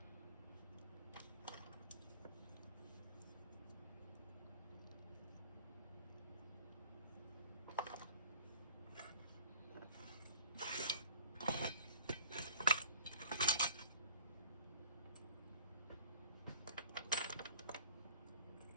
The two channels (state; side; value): inverted; both; correlation -0.51